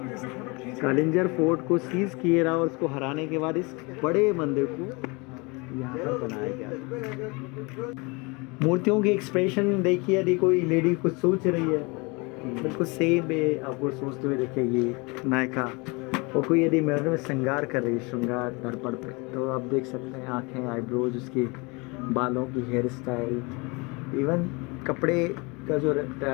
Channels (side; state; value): right; quieter; 28.0 dB